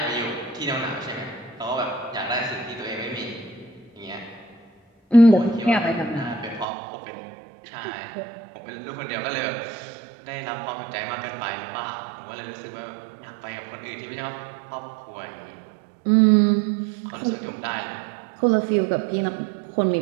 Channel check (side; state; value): left; drops out; at 6.7 s